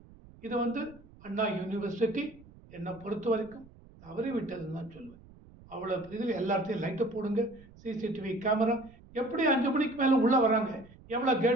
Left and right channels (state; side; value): noise; right; rumble, 22 dB below the sound